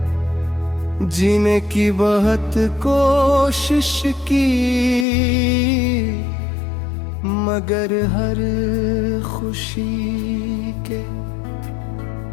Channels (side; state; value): right; drops out; at 5.1 s